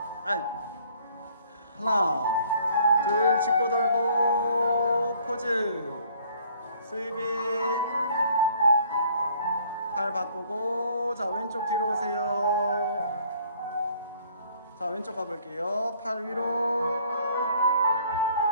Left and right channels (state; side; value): inverted; both; correlation -0.59